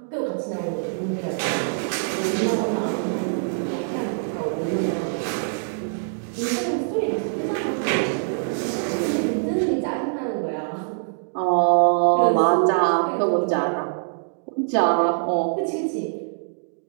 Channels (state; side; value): silent; left; digital silence